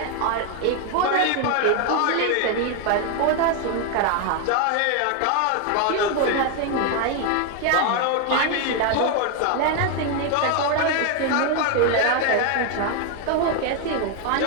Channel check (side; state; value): both; different; correlation 0.01